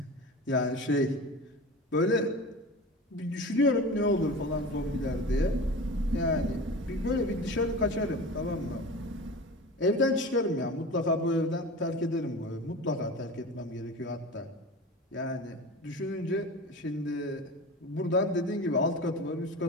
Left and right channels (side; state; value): both; normal; correlation 0.33